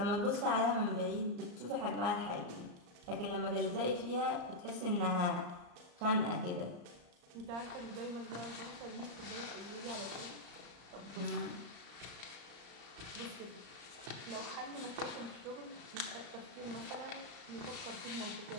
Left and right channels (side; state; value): left; late; 34 ms